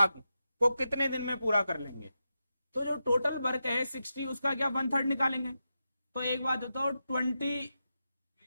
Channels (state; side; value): inverted; both; correlation -0.89